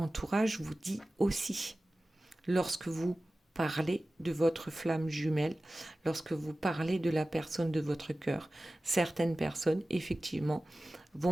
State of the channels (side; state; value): both; normal; correlation 0.96